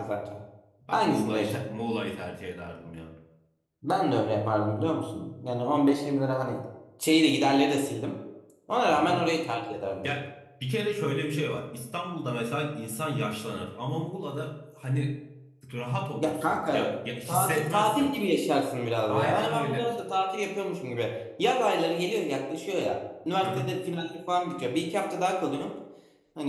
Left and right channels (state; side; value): identical; both; correlation 1.00